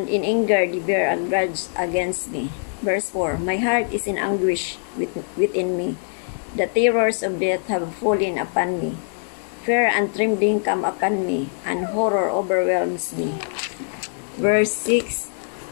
in anger they bear a grudge against me. Verse 4. My heart is in anguish within me. The terrors of death have fallen upon me. Fear and trembling come upon me, and horror overwhelms me. Verse 6.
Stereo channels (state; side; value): silent; right; 64 dB below the other